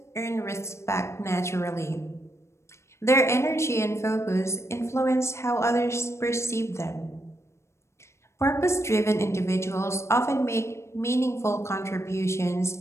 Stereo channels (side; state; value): right; late; 0.13 ms